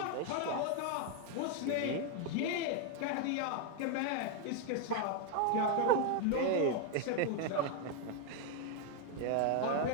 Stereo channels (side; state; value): both; different; correlation 0.01